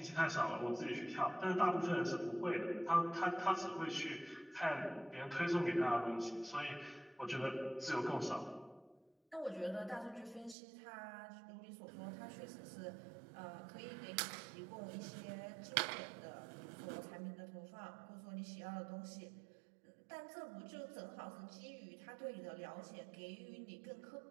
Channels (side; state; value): left; drops out; at 10.6 s